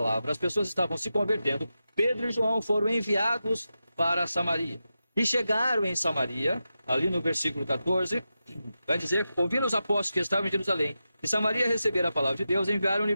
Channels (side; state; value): both; inverted; correlation -0.91